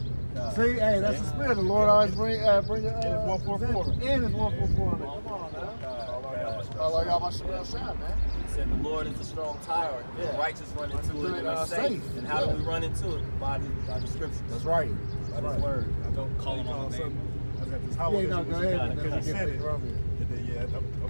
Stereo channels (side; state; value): both; inverted; correlation -1.00